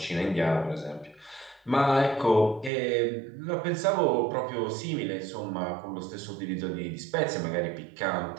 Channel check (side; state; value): left; drops out; at 2.7 s